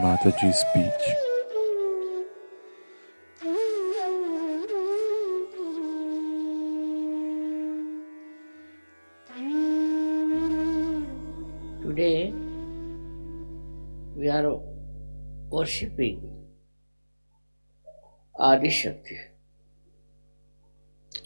speech. Today we are worshipping Adi Shakti.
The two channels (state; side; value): inverted; both; correlation -1.00